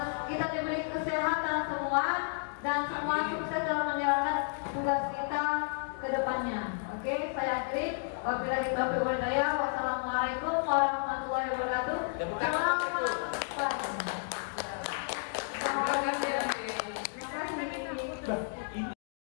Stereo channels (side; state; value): right; silent; digital silence